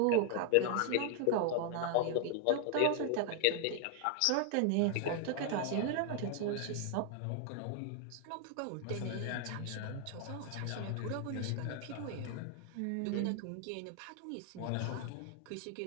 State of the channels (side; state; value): both; different; correlation 0.00